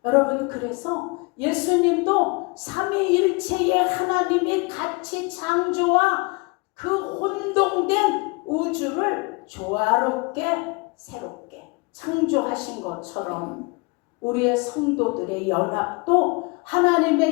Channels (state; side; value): quieter; right; 28.6 dB